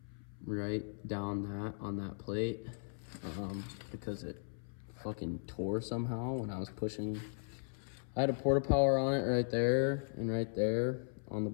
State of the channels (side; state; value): right; silent; 53 dB below the other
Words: right down that on that plate, because it fucking tore somehow when I was pushing. I had a porta power on it right there and right there on the